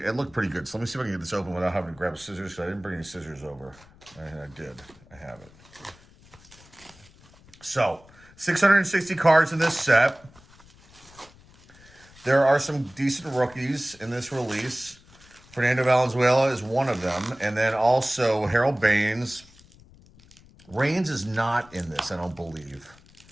looked pretty good. So let me see if I can get this open without having to grab scissors. So I didn't bring any scissors over. I did. I have it. So 660 cards in this set. There are some decent rookies in this release. Fernando Valenzuela is one of them. And then also Harold Baines. Reigns is not in this, I don't believe.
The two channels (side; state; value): left; noise; rumble, 25 dB below the sound